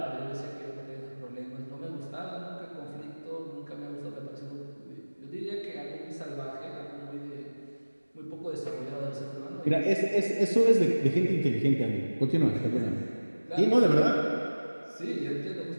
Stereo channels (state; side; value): inverted; both; correlation -1.00